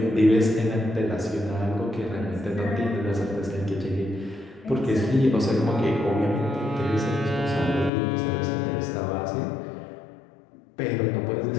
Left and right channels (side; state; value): right; drops out; at 7.9 s